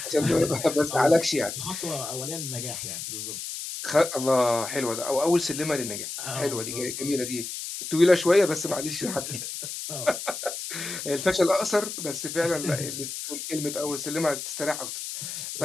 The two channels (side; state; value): left; noise; hiss, 7 dB below the sound